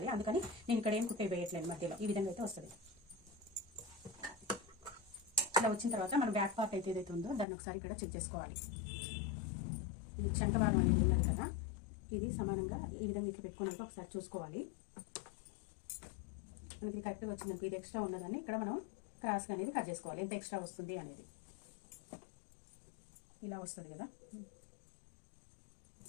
అందుకని నేను ఇక్కడ ఏం కుట్టే వేయట్లేదు, మధ్యలో ఈ విధంగా అయితే వస్తుంది. ఇలా వచ్చిన తర్వాత మన బ్యాక్ పార్ట్ అయితే ఏదైతే ఉందో దాన్ని ఒకసారి ఇక్కడ చెక్ చేసుకోవాలి. ఈ చంకవారం అనేది ఉన్నది కదా, ఇది సమానంగా ఈ విధంగా ఇట్లా పెట్టుకున్నాక ఒకసారి చూసుకోవాలి. మనకి కరెక్ట్గా వచ్చిందంటే ఇది ఎక్స్ట్రా ఉన్నదాన్ని ఇక్కడ మనం క్రాస్గా అనేది కట్ చేసుకోవాలి, ఎంత ఎక్స్ట్రా వస్తుంది అనేది. ఇలా వస్తుంది కదా,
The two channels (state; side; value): drops out; right; at 7.5 s